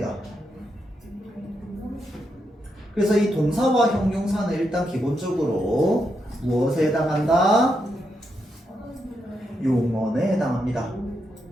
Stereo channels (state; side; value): normal; both; correlation 0.82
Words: 그래서 이 동사와 형용사는 일단 기본적으로 무엇에 해당한다? 용언에 해당합니다.